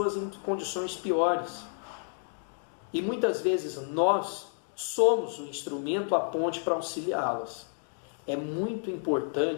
em condições piores. E muitas vezes nós somos o instrumento, a ponte para auxiliá-las. É muito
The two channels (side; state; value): right; silent; digital silence